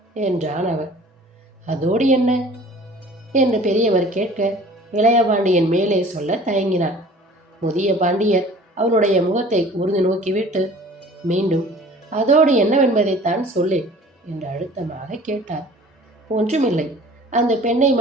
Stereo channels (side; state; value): both; normal; correlation 0.48